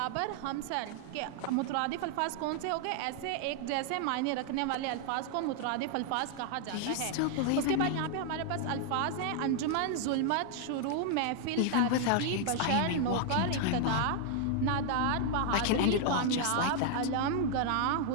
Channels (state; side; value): different; both; correlation 0.00